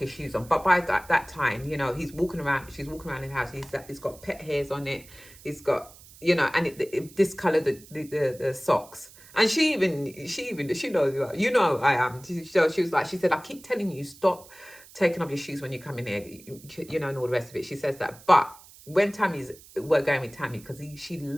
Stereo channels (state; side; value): noise; right; hiss, 22 dB below the sound